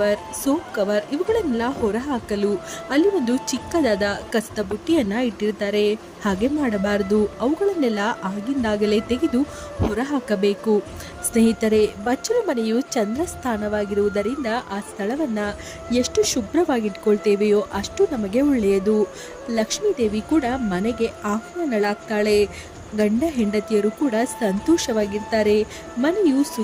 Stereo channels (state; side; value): identical; both; correlation 1.00